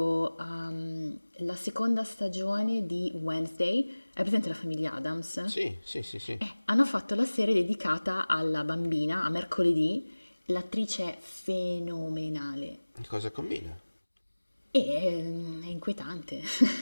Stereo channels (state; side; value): inverted; both; correlation -1.00